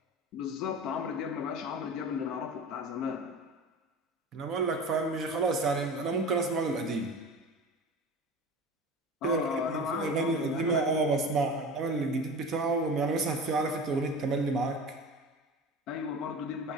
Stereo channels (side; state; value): both; normal; correlation 0.34